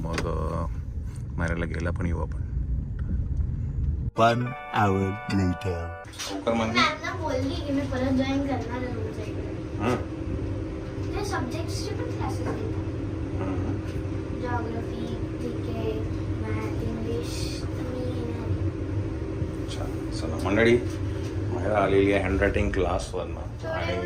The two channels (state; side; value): identical; both; correlation 1.00